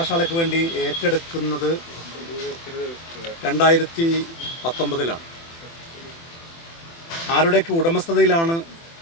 വേണ്ടി ഏറ്റെടുക്കുന്നത് 2019 ആരുടെയൊക്കെ ഉടമസ്ഥതയിലാണ്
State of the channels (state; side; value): late; right; 24 ms